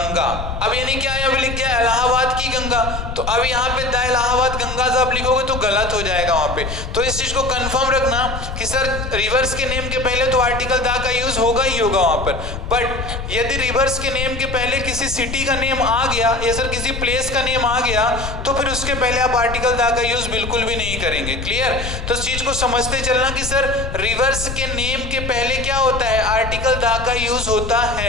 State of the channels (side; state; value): left; noise; rumble, 6 dB below the sound